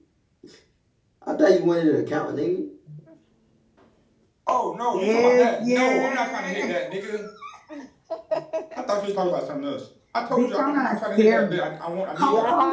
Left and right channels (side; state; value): both; identical; correlation 1.00